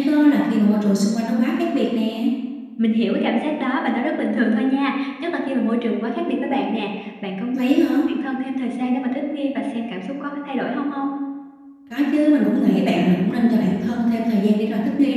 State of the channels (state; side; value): identical; both; correlation 1.00